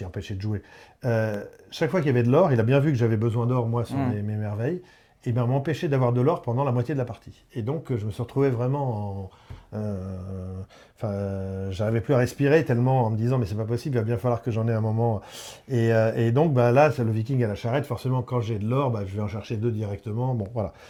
empêcher de jouer, chaque fois qu'il y avait de l'or, il a bien vu que j'avais besoin d'or, moi, sur mes merveilles, et bien m'empêcher d'avoir de l'or pendant la moitié de la partie. Et donc, je me suis retrouvé vraiment j'arrivais plus à respirer tellement en me disant mais c'est pas possible, il va bien falloir que j'en ai un moment. Et donc là, c'est le viking à la charrette. Forcément, quand j'ai de l'or, je vais en chercher 2 directement. Bon, voilà.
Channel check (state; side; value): identical; both; correlation 1.00